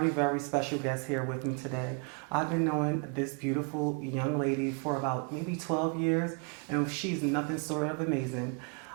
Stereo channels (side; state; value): left; quieter; 36.8 dB